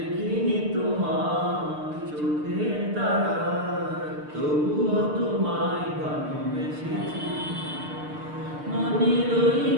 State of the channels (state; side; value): late; left; 6.7 ms